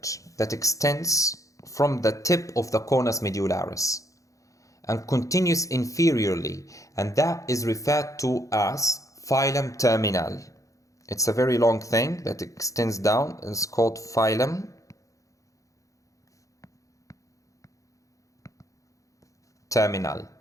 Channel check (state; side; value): late; right; 0.16 ms